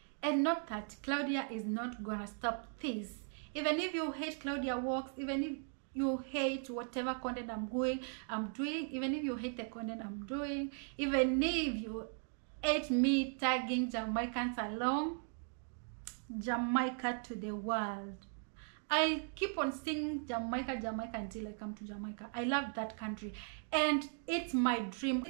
not that Claudia is not gonna stop this. Even if you hate Claudia Walks, even if you hate whatever content I'm doing, even if you hate the content I'm doing, even if you hate me tagging Jamaicans along, Jamaica to the world. I keep on singing Jamaica, Jamaica until I come to Jamaica. I love that country, and it's my dream.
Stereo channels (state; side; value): silent; left; 52 dB below the other